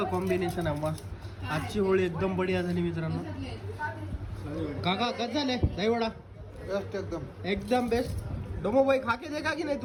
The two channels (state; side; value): identical; both; correlation 1.00